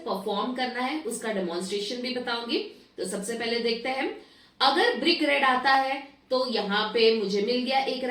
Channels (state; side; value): identical; both; correlation 1.00